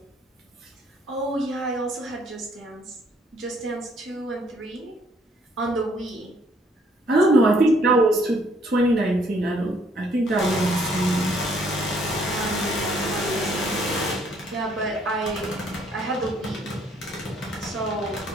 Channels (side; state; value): both; normal; correlation 0.65